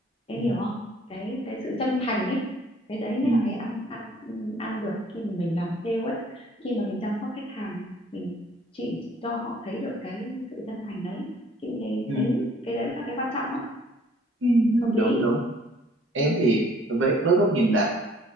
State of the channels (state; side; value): normal; both; correlation 0.58